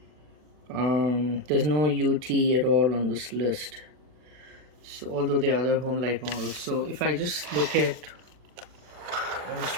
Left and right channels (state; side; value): late; left; 40 ms